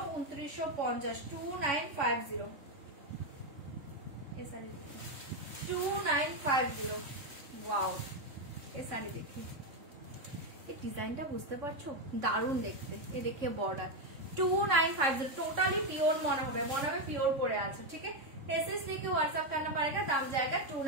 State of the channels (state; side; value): late; left; 3.6 ms